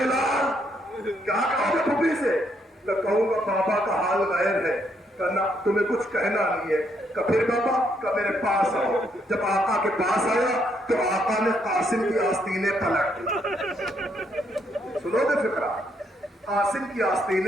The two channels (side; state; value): both; normal; correlation 0.74